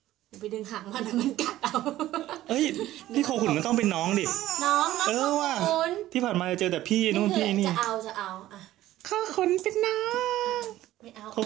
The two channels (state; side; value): quieter; left; 14.7 dB